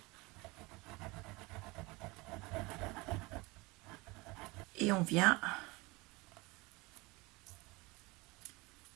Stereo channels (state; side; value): quieter; left; 24.0 dB